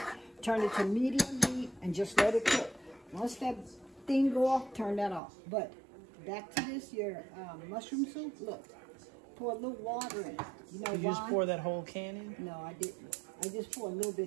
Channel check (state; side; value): drops out; left; at 5.2 s